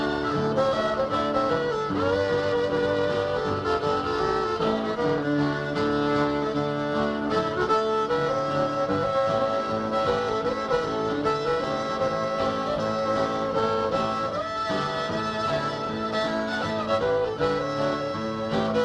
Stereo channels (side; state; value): both; identical; correlation 1.00